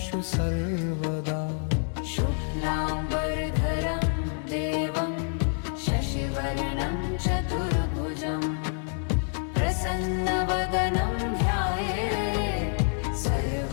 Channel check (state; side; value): silent; right; 60 dB below the other